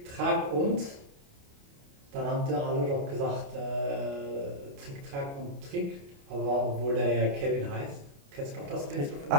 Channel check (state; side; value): late; left; 29 ms